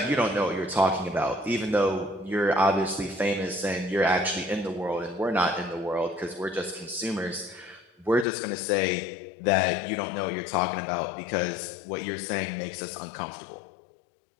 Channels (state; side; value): drops out; right; at 8.2 s